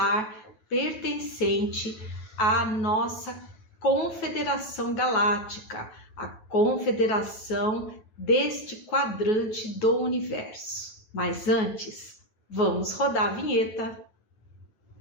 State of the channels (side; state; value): right; late; 9.3 ms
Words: pertencente à nossa Confederação Galáctica, a confederação deste quadrante do universo. Mas antes, vamos rodar a vinheta.